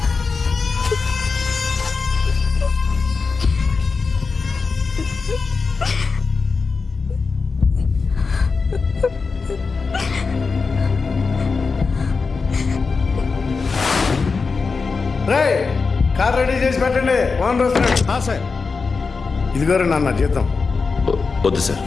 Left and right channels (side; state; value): right; quieter; 4.7 dB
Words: కార్ రెడీ చేసి పెట్టండి. ఓనర్ వస్తున్నాడు. సార్ ఇదిగోరు నాన్న జీతం. వద్దు సార్,